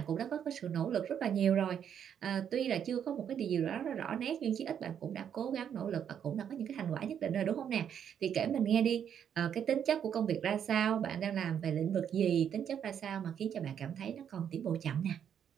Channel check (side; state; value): left; quieter; 8.7 dB